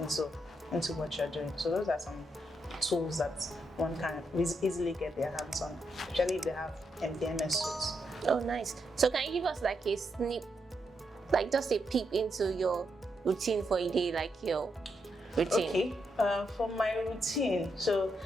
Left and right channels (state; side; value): normal; both; correlation 0.81